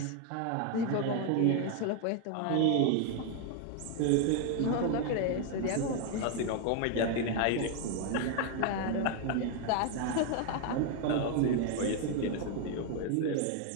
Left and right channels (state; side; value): different; both; correlation 0.01